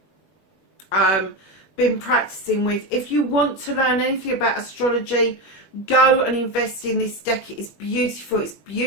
been practicing with. If you want to learn anything about astrology, go and invest in this deck. It is beautiful. It's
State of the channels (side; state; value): right; late; 21 ms